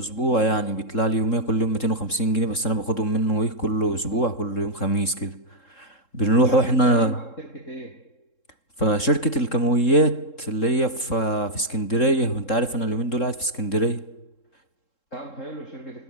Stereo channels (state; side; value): late; right; 3.7 ms